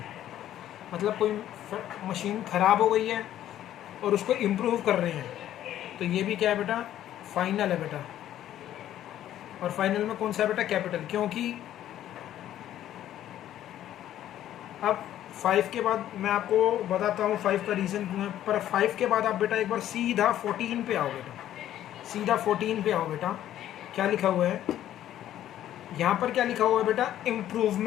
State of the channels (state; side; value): quieter; right; 12.1 dB